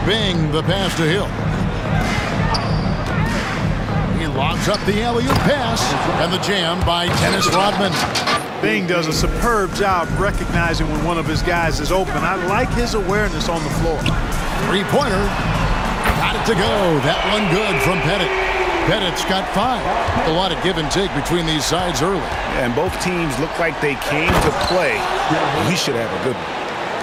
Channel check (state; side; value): identical; both; correlation 1.00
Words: Bing, the pass to Hill. He lobs up the alley-oop pass, and the jam by Dennis Rodman. Bing does a superb job recognizing when one of his guys is open. I like his awareness on the floor. Three-pointer. Got it to go. That one good from Pettit. Pettit's got 5. A lot of give and take between these sides early. And both teams look like they came to play. We should have a good one.